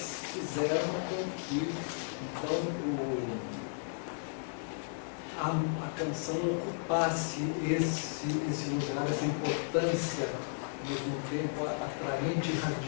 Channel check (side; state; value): right; silent; digital silence